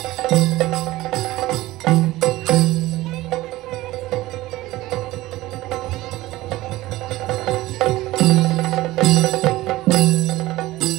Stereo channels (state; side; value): quieter; left; 17.6 dB